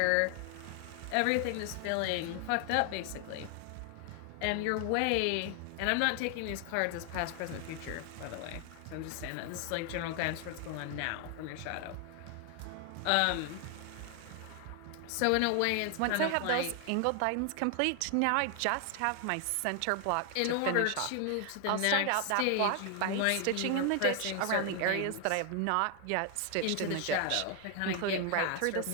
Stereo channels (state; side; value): different; both; correlation 0.00